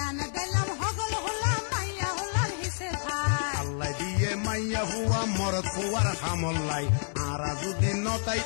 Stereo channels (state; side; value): silent; right; digital silence